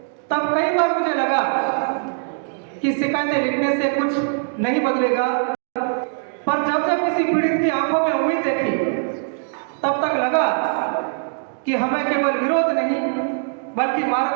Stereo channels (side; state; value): left; silent; digital silence